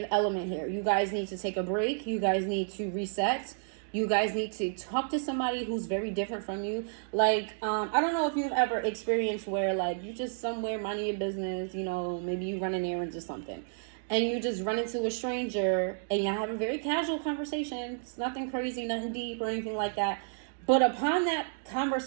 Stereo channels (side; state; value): left; silent; digital silence